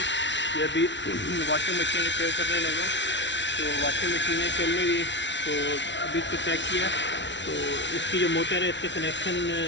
ये अभी वॉशिंग मशीन रिपेयर करने लगा, तो वॉशिंग मशीनें चल नहीं रही, तो अभी इसको चेक किया तो इसकी जो मोटर है इसके कनेक्शन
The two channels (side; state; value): right; late; 0.52 ms